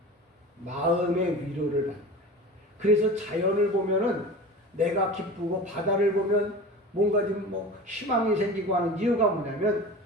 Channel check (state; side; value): normal; both; correlation 0.34